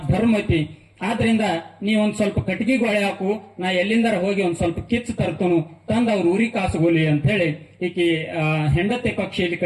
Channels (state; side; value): identical; both; correlation 1.00